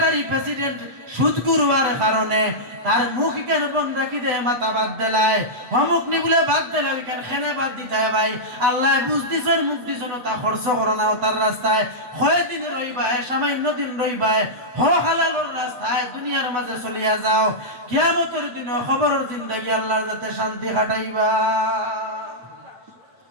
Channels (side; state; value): left; late; 8.0 ms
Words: প্রেসিডেন্ট সুদখোর হওয়ার কারণে তার মুখ কেন বন্ধ রাখি দেয়, মাথা বাদ দেলায়, অমুক নি বলে বাদ দিলে ওইখান খেনে বাদ দিতে হয়। ভাই আল্লাহ বুঝ দিছন মুখ দিছন তা খরচ করো না তার রাস্তায়, কয়েকদিন রইবায়, সামান্য দিন রইবায়, হালালের রাস্তায় দুনিয়ার মাঝে চলিয়া যাও, কিয়ামতের দিন খবরের জিন্দেগি আল্লাহর যাতে শান্তি কাটাইবা